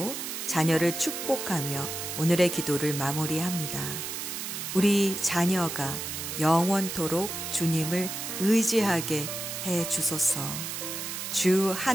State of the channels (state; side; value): noise; right; hiss, 5 dB below the sound